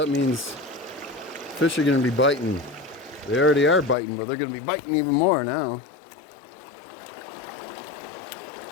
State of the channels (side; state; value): right; drops out; at 4.0 s